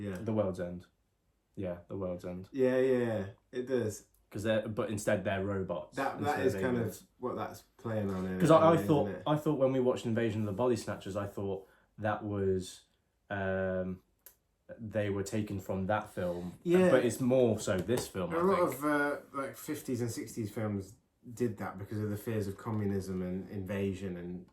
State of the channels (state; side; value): identical; both; correlation 1.00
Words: The World's End. Yeah, The World's End. Yeah, it does. But instead they're robots. That is kind of what that's playing on. Because I thought when we watched Invasion of the Body Snatchers, I thought that was they were taken from that film. Yeah, but it's more so this film. A lot of like 50s and 60s films did that because of the fears of communism and invasion